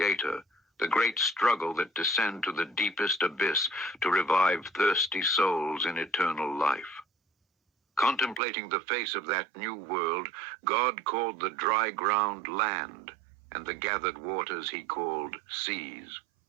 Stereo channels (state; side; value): drops out; left; at 8.4 s